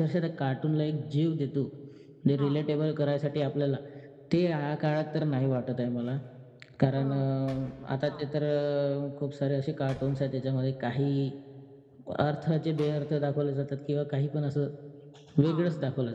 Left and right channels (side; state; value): both; identical; correlation 1.00